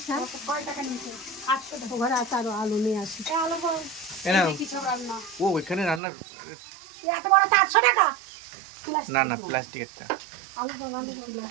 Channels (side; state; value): left; drops out; at 6.0 s